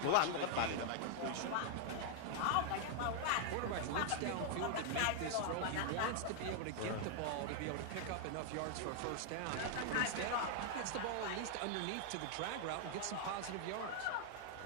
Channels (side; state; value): both; different; correlation 0.00